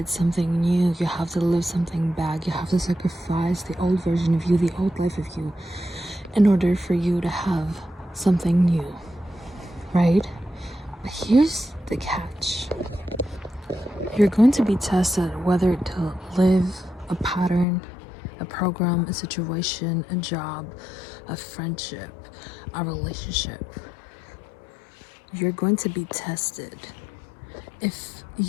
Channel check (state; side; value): drops out; right; at 17.7 s